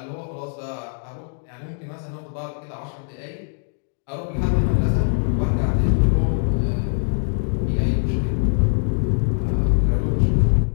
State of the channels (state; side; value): silent; right; 64 dB below the other